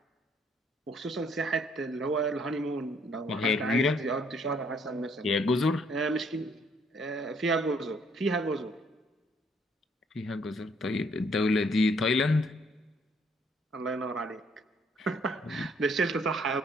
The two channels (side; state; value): both; normal; correlation 0.66